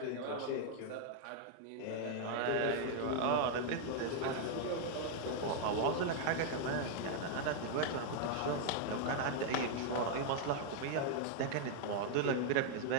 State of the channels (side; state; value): both; different; correlation 0.00